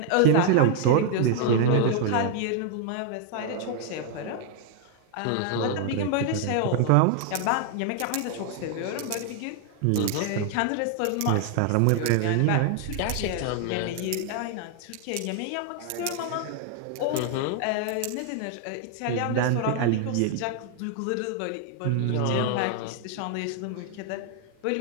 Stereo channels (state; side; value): different; both; correlation 0.00